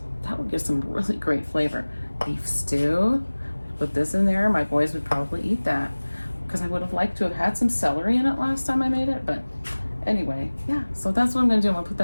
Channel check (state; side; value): inverted; both; correlation -1.00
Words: That would give some really great flavor. Beef stew. Put this in there. My boys would probably eat that because I would have liked to have had some celery in it last time I made it. But anyway, yeah, so that's what I'm gonna do. I'm gonna put